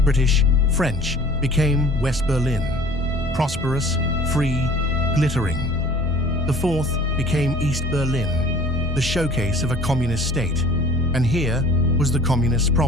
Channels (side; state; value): both; normal; correlation 0.48